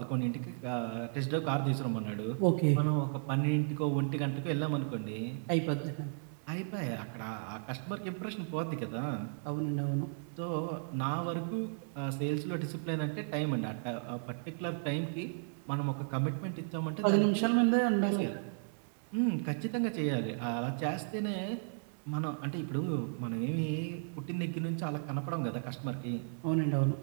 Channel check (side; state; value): left; silent; digital silence